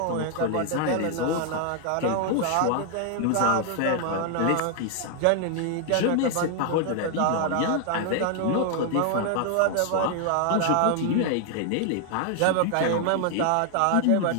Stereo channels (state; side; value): different; both; correlation 0.00